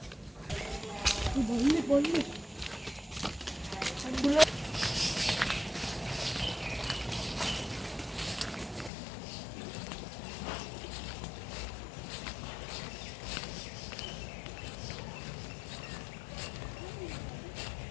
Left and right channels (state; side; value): drops out; right; at 8.9 s